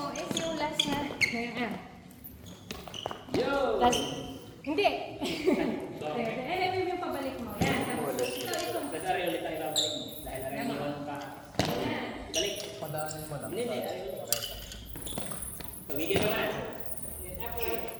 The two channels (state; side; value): identical; both; correlation 1.00